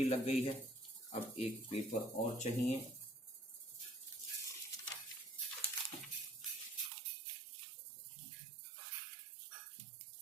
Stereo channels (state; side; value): drops out; left; at 6.9 s